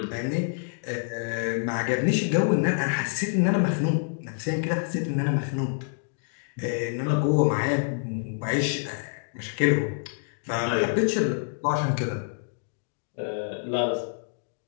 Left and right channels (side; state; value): right; silent; digital silence